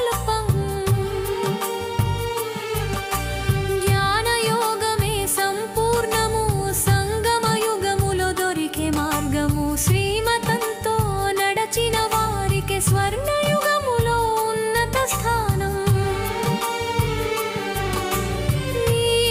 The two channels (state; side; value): identical; both; correlation 1.00